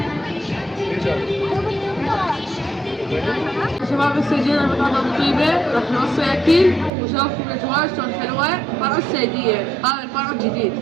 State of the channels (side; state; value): left; drops out; at 6.9 s